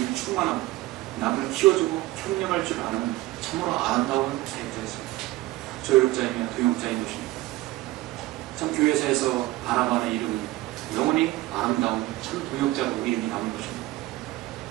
충만하고 남을 키워주고 협력할 줄 아는 참으로 아름다운 사역자였습니다. 조력자이며 동역자인 것입니다. 참 교회사에서 바나바의 이름은 영원히 아름다운 참 동역자로 이름이 남은 것입니다.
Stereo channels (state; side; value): quieter; left; 18.3 dB